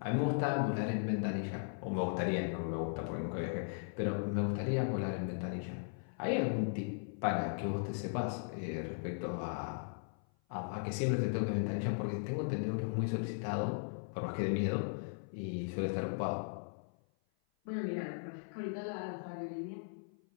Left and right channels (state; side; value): silent; right; 53 dB below the other